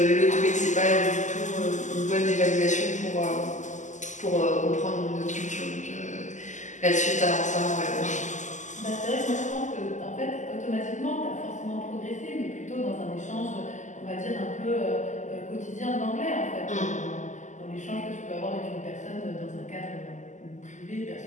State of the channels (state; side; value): late; right; 0.35 ms